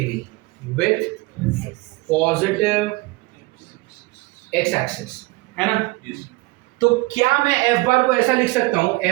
with positive x axis, है ना? Yes. तो क्या मैं f बार को ऐसा लिख सकता हूं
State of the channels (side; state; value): left; quieter; 22.7 dB